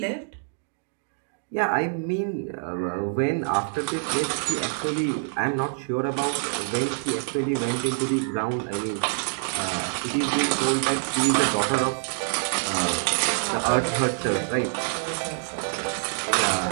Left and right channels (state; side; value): silent; left; digital silence